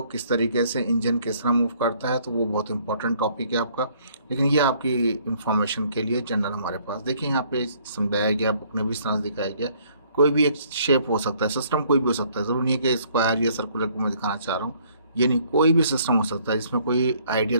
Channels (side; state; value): both; inverted; correlation -0.62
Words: किस तरीके से इंजन किस तरह मूव करता है, तो वो बहुत इंपॉर्टेंट टॉपिक है आपका। लेकिन ये आपकी इंफॉर्मेशन के लिए जनरल हमारे पास देखिए यहाँ पे समझाया गया, बुक में भी इस तरह से दिखाया गया। कोई भी एक शेप हो सकता है, सिस्टम कोई भी हो सकता है, ज़रूरी नहीं है कि स्क्वायर या सर्कुलर को मैं दिखाना चाह रहा हूँ। ये नहीं, कोई भी सिस्टम हो सकता है जिसमें कोई